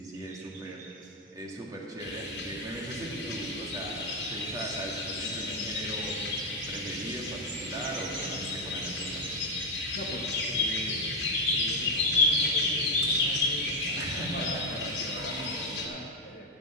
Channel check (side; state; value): both; normal; correlation 0.05